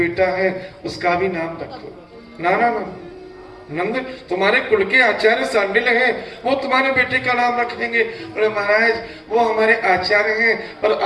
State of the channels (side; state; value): both; identical; correlation 1.00